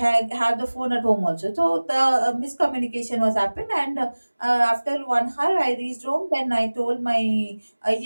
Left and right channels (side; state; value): both; inverted; correlation -1.00